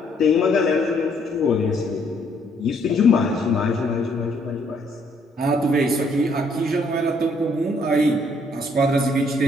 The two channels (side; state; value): both; normal; correlation 0.68